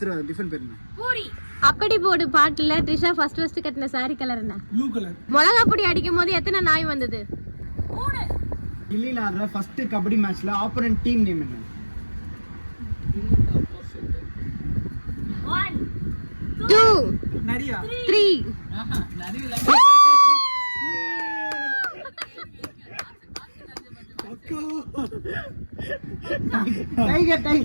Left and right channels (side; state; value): both; inverted; correlation -1.00